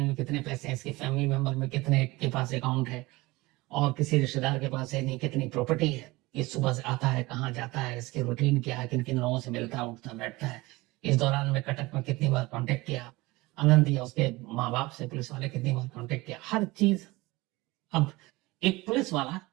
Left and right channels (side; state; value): left; quieter; 21.4 dB